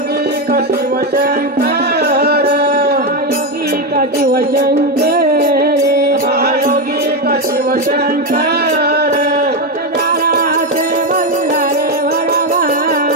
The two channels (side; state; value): both; normal; correlation 0.09